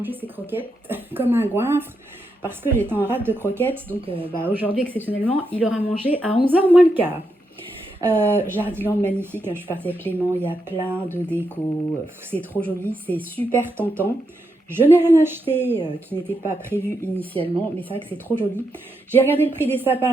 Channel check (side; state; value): both; normal; correlation 0.83